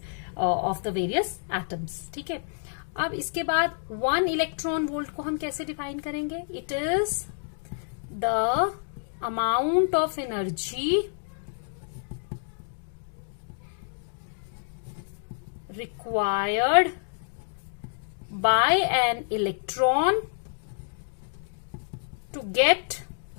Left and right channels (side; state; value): right; silent; digital silence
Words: of the various atoms. ठीक है, अब इसके बाद 1 इलेक्ट्रॉन वोल्ट को हम कैसे डिफाइन करेंगे? It is the amount of energy required by an electron to get